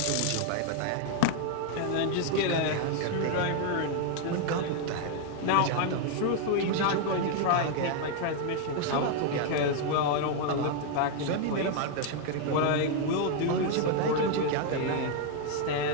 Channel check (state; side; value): different; both; correlation 0.00